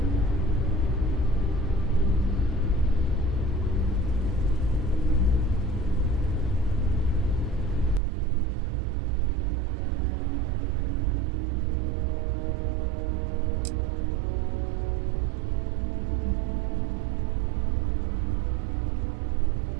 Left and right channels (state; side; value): drops out; left; at 8.0 s